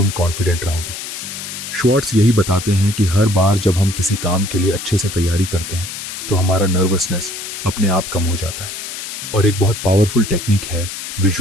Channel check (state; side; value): noise; left; hiss, 8 dB below the sound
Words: कॉन्फिडेंट रहोगे। श्वार्ट्ज यही बताते हैं कि हर बार जब हम किसी काम के लिए अच्छे से तैयारी करते हैं तो हमारा नर्वसनेस अपने आप कम हो जाता है। और एक बहुत पावरफुल टेक्निक है